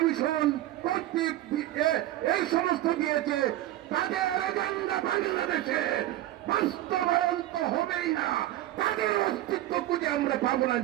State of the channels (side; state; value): left; quieter; 14.6 dB